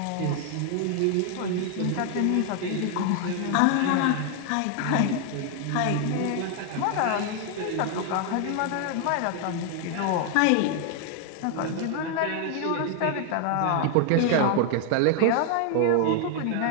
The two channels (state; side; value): different; both; correlation 0.00